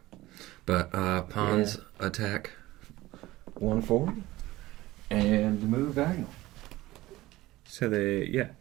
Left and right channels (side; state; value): left; quieter; 17.8 dB